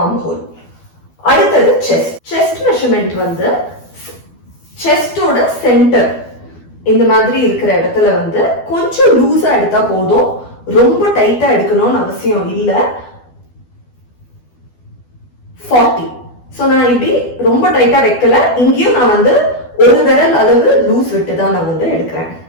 ஹோல். அடுத்தது செஸ்ட். செஸ்ட் மெஷர்மெண்ட் செஸ்டோட சென்டர் இந்த மாதிரி இருக்கிற இடத்துல கொஞ்சம் லூஸா எடுத்தா போதும், ரொம்ப டைட்டா எடுக்கணும்னு அவசியம் இல்ல. 40. சோ நான் இப்படி ரொம்ப டைட்டா வைக்கல, இங்கேயும் நான் ஒரு விரல் அளவு லூஸ் விட்டு தான் நான் எடுக்கிறேன்.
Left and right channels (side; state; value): right; late; 12 ms